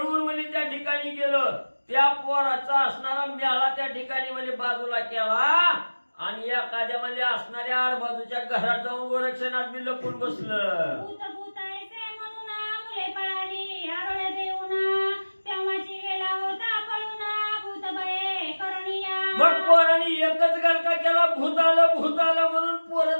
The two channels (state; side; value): inverted; both; correlation -1.00